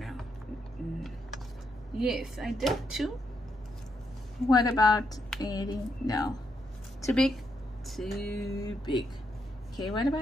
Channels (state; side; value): normal; both; correlation 0.79